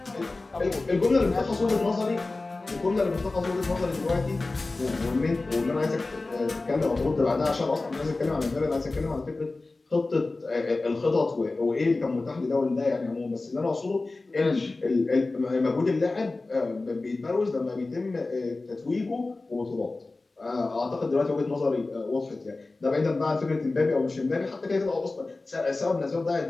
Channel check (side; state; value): right; quieter; 3.3 dB